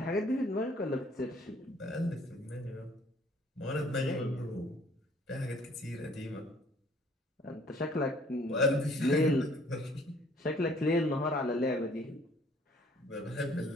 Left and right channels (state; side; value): normal; both; correlation 0.58